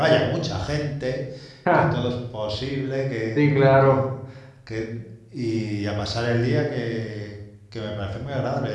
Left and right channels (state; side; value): identical; both; correlation 1.00